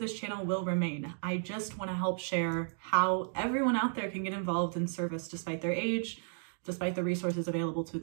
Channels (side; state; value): left; silent; 55 dB below the other